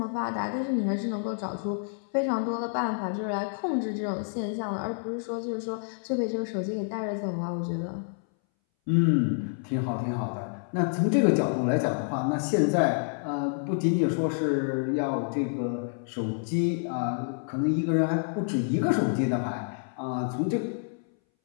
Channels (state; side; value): silent; right; 59 dB below the other